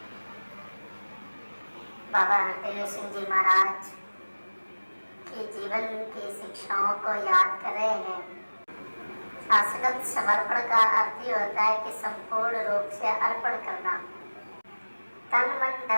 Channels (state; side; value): inverted; both; correlation -1.00